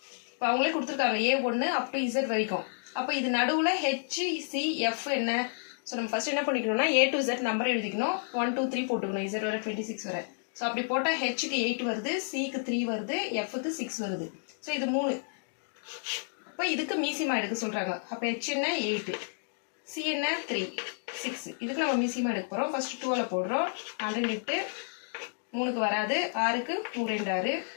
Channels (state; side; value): silent; right; digital silence